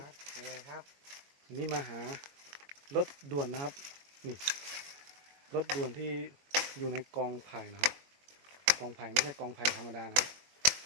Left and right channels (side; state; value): left; late; 21 ms